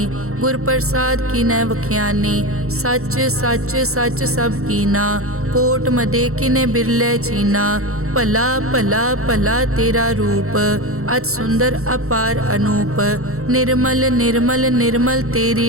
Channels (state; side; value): late; left; 0.63 ms